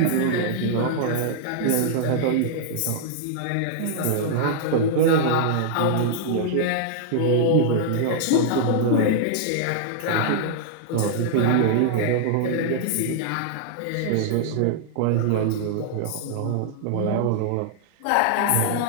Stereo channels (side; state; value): both; different; correlation -0.01